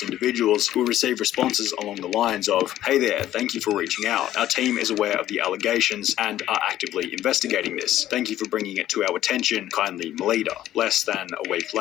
individuals who would receive responses along the lines of, "Hey there, thank you for reaching out. Our team is aware of the allegations and are actively investigating this. Thank you for bringing it to our attention. Kindly Melita." Less than a week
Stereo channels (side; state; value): right; quieter; 13.0 dB